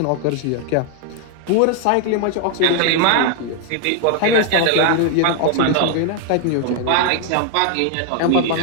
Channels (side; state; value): both; different; correlation 0.00